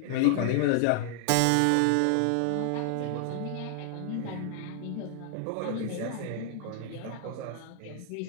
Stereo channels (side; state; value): both; different; correlation 0.00